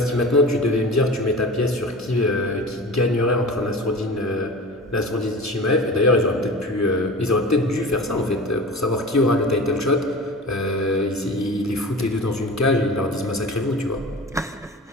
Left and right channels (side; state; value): both; normal; correlation 0.35